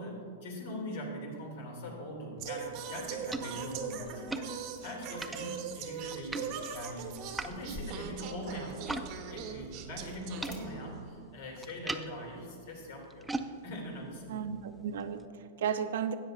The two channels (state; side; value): quieter; left; 3.2 dB